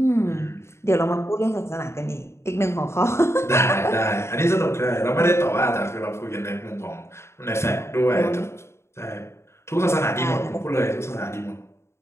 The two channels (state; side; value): late; right; 0.13 ms